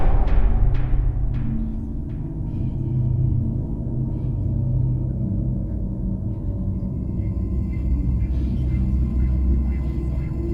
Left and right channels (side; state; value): both; identical; correlation 1.00